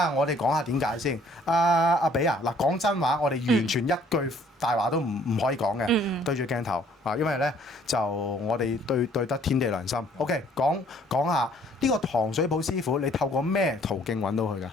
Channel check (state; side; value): normal; both; correlation 0.60